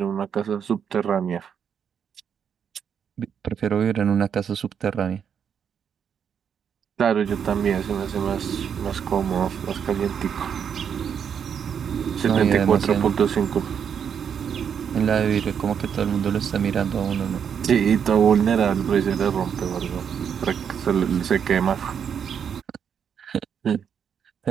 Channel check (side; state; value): left; quieter; 7.7 dB